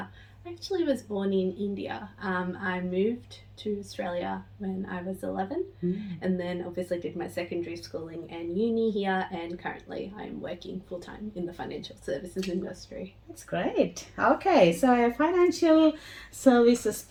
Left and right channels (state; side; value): identical; both; correlation 1.00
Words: I actually was born in India. I moved to Australia when I was 11 and then obviously did my secondary schooling and uni here, and currently I'm working full time in the financial services industry. That's great. Okay, so a financial services